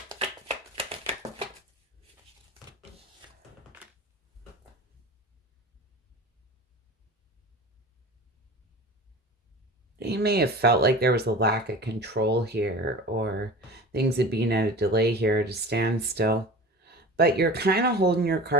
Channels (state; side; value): normal; both; correlation 0.36